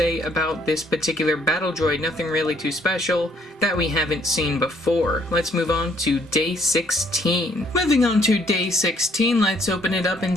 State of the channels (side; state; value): both; normal; correlation 0.66